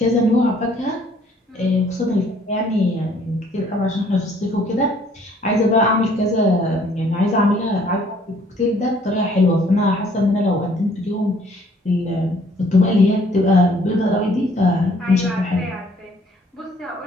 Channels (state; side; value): normal; both; correlation 0.60